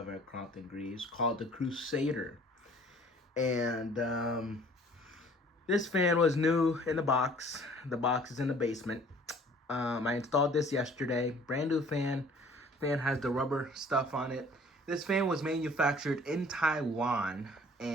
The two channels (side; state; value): both; normal; correlation 0.53